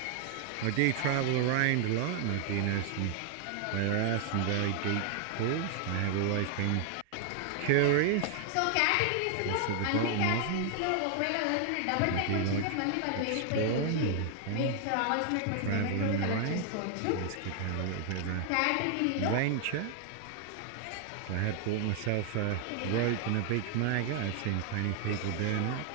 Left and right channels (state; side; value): different; both; correlation 0.00